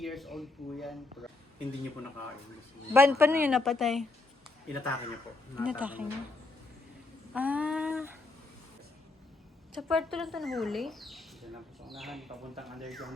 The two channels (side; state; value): right; quieter; 3.4 dB